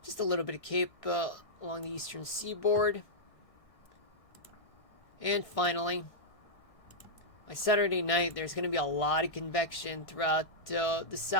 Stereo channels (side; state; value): right; late; 1.6 ms